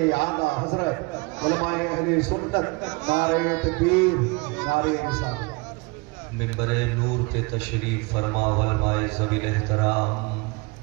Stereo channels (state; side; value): quieter; left; 27.3 dB